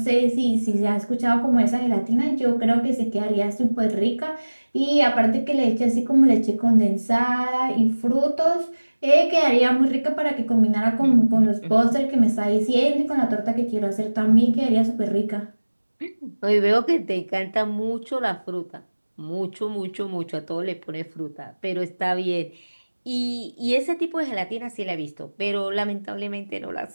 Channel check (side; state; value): both; inverted; correlation -1.00